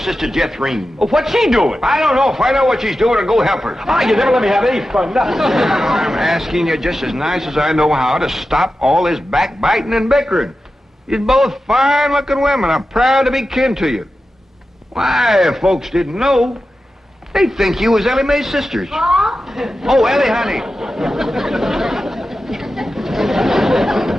DouglasIrene? Well, what's she doing? I don't know. Find out what she's doing and go help her. Ah, you never let me have any fun. I'm asking you just as nice as I know how to stop all this backbiting and bickering. You're both fine-looking women. I'm proud to be kin to you. Why, if folks didn't know, they'd think you was Ellie Mae's sisters. Oh, Ellie, honey.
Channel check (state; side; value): normal; both; correlation 0.92